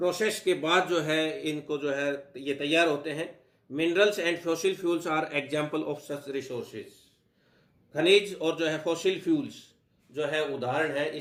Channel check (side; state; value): both; identical; correlation 1.00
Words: के बाद जो है इनको जो है ये तैयार होते हैं। Minerals and fossil fuels are example of such resources, खनिज और जो है फॉसिल फ्यूल्स जो है उदाहरण है